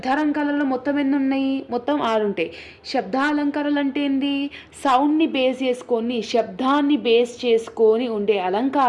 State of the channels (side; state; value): both; identical; correlation 1.00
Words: మొత్తం ఎన్ని ఉన్నాయి? మొత్తం 6 ఉంటాయి. శబ్దాలంకారాలు అంటే ఏంది? సౌండ్ని బేస్ చేసుకొని, శబ్దాన్ని బేస్ చేసుకొని ఉండే